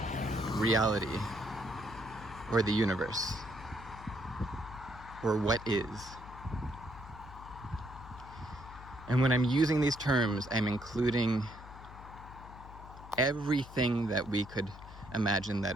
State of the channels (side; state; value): left; noise; hum, 16 dB below the sound